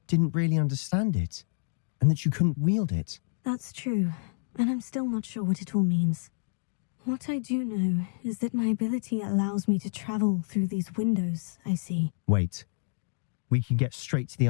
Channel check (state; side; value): silent; right; digital silence